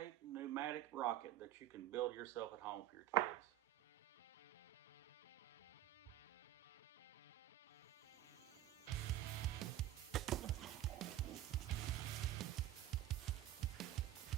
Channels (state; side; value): quieter; left; 12.9 dB